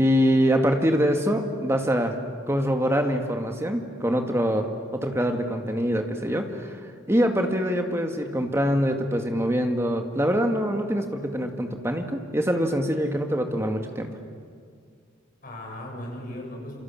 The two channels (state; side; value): normal; both; correlation 0.80